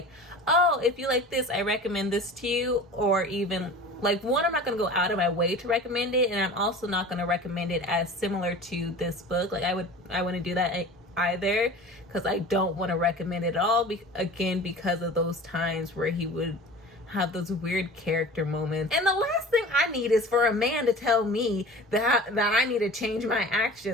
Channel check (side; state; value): both; normal; correlation 0.39